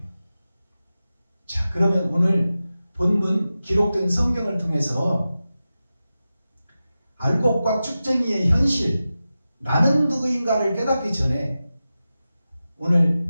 자, 그러면 오늘 본문 기록된 성경을 통해서 알곡과 쭉쟁이의 현실, 나는 누구인가를 깨닫기 전에 오늘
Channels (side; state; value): both; inverted; correlation -0.94